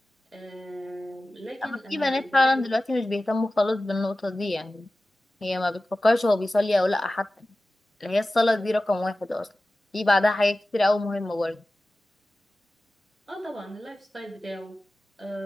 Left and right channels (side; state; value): both; normal; correlation 0.96